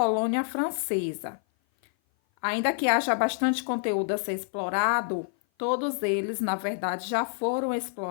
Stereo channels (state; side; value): silent; right; 56 dB below the other